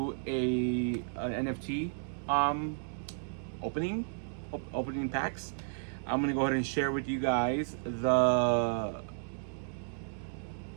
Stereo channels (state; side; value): silent; left; digital silence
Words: an NFT opening packs. I'm gonna go ahead and share with you guys the